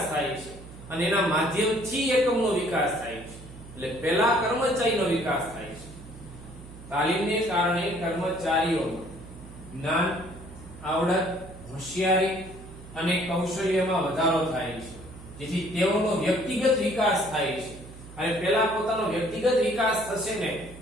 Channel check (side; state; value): right; noise; hum, 16 dB below the sound